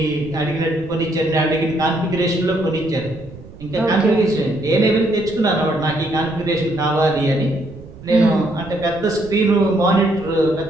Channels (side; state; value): right; noise; rumble, 18 dB below the sound